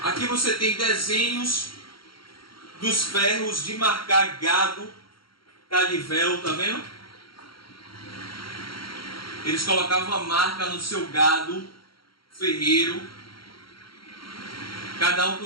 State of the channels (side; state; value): right; late; 0.73 ms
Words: Aqui você tem desenhos dos ferros de marcar gado, Cadivel, tá vendo? Eles colocavam a marca no seu gado ferreiro, cada um